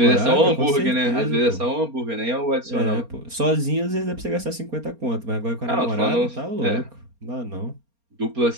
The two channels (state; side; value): late; left; 4.3 ms